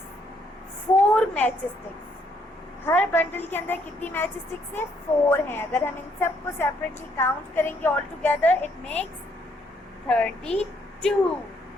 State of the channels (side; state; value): both; normal; correlation 0.70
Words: 4 matchsticks। Her bundle के अंदर कितनी match sticks है? 4 हैं। अगर हम इन सब को सेपरेटली काउंट करेंगे all together, it makes 32।